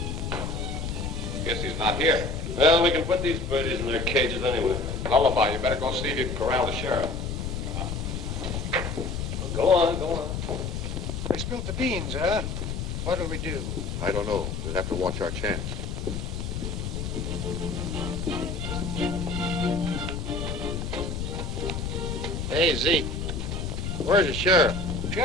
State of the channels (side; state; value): left; noise; rumble, 3 dB below the sound